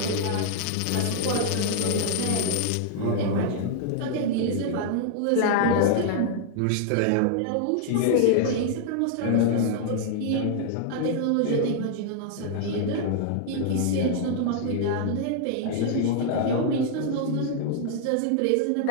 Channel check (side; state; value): both; different; correlation -0.01